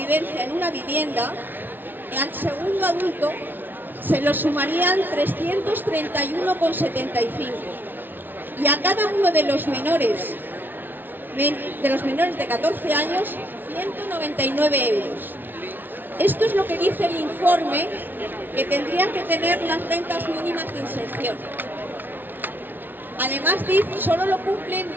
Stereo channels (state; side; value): late; left; 0.092 ms